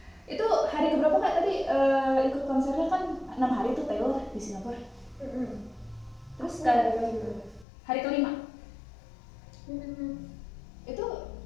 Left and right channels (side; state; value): right; drops out; at 7.7 s